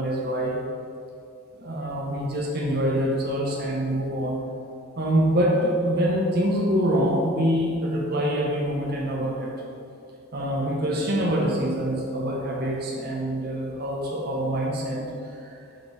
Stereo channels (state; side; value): normal; both; correlation 0.49